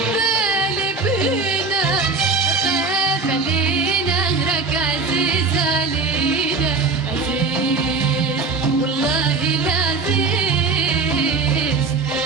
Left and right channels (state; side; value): quieter; left; 4.3 dB